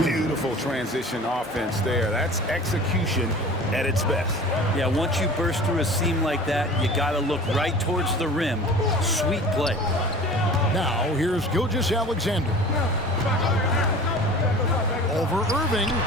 Beautiful transition offense there. That's execution at its best. Yeah, once you burst through a seam like that, you got to look right towards the rim. Sweet play. Now, here's Gilgeous-Alexander. Over Irving.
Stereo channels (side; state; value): both; normal; correlation 0.41